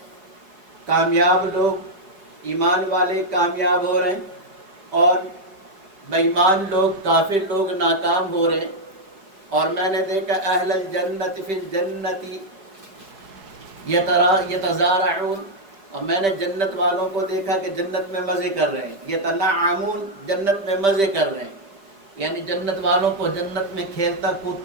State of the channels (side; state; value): left; late; 5.1 ms